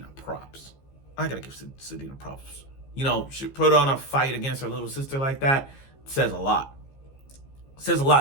props. Sadeena props. She put on a fight against her little sister like that. It says a lot. It says a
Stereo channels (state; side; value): late; right; 15 ms